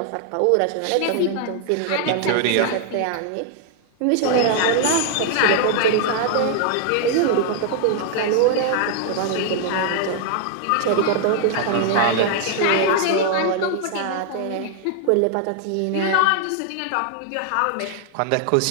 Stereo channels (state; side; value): different; both; correlation 0.00